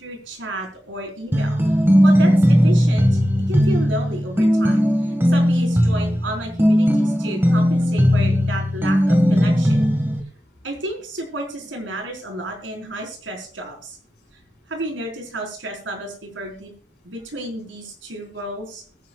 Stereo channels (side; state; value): both; normal; correlation 0.93